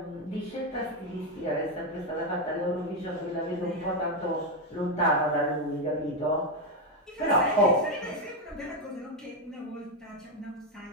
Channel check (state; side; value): normal; both; correlation 0.07